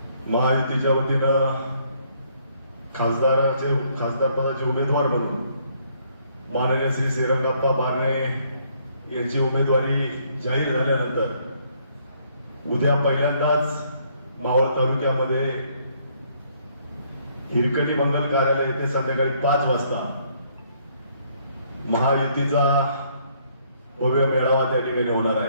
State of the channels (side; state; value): both; inverted; correlation -0.67